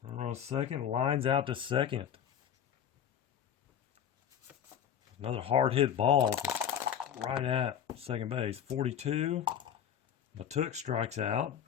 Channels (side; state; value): right; quieter; 9.1 dB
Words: on second. Lines out to second. Another hard hit ball right at second base. 42. Matuk strikes out.